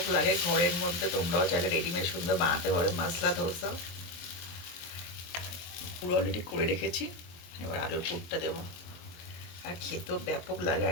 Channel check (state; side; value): late; right; 23 ms